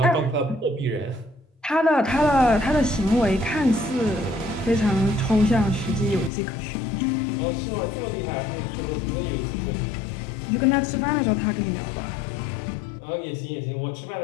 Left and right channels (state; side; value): drops out; right; at 6.3 s